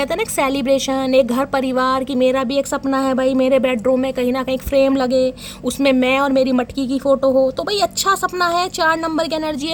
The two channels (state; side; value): identical; both; correlation 1.00